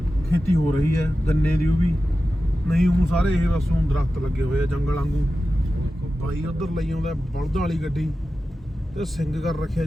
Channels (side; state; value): both; normal; correlation 0.93